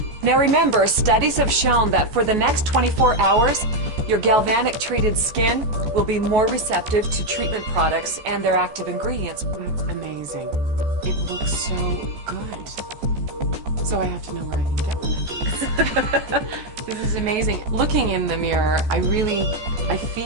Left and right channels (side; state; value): left; late; 14 ms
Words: Now remember, studies have shown that for the next 24 hours, your galvanic treated skin will be more receptive to treatment products and their active ingredients. That's amazing. It looks so good. So I have to know where I can get one of these. This is amazing. Looking in the mirror, I can